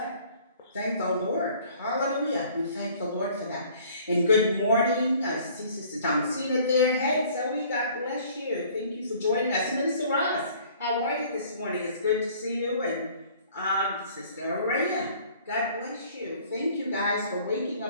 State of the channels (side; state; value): both; inverted; correlation -0.54